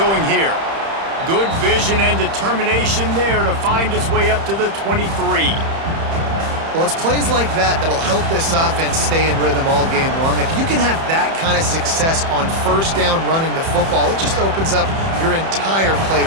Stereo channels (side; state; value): left; late; 30 ms